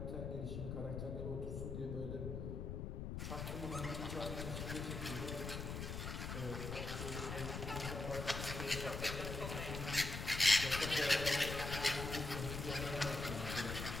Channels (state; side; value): noise; left; rumble, 4 dB below the sound